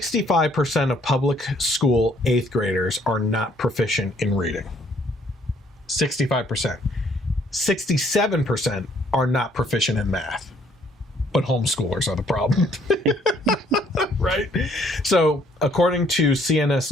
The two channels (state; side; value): normal; both; correlation 0.64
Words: of public school 8th graders are not proficient in reading. 65%. 67% are not proficient in math. But homeschoolers are the problem. Right? So, according to CNS